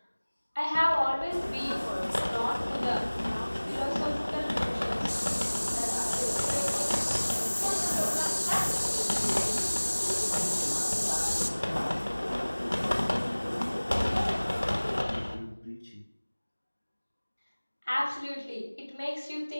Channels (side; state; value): both; inverted; correlation -1.00